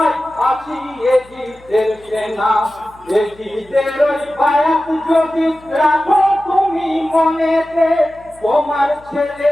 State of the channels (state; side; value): noise; left; hum, 26 dB below the sound